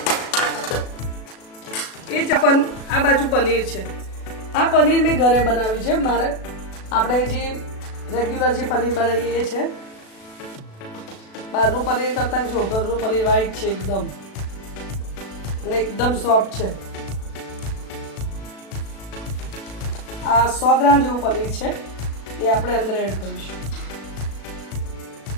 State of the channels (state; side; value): late; right; 36 ms